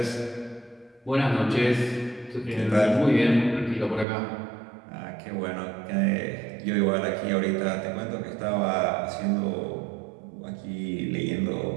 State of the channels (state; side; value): drops out; left; at 4.0 s